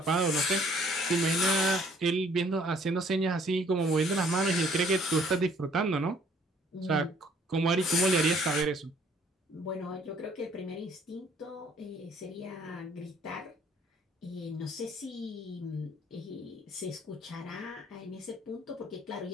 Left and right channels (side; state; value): both; normal; correlation 0.60